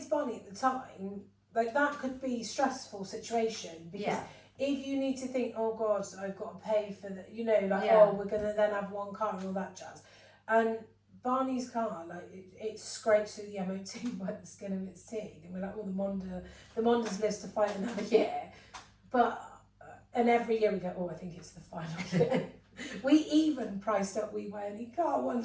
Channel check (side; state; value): both; identical; correlation 1.00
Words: Barney at the time, like, that could be a stressful situation, because if you need to think, oh god, I've got to pay for the, oh, we're going to then have one car and all that jazz. And Barney's car, like, it scrapes through the MOT by the skin of its teeth, and we're like, oh, the Mondas lives to fight another year. But and every year we go, oh, I think it's the final year. We even priced up We Buy Any Car one